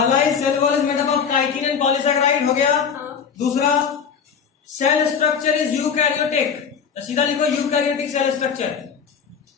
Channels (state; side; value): quieter; right; 6.8 dB